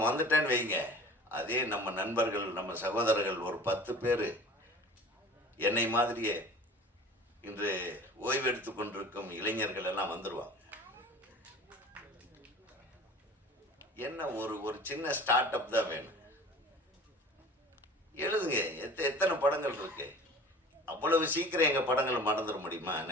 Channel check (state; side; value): normal; both; correlation 0.43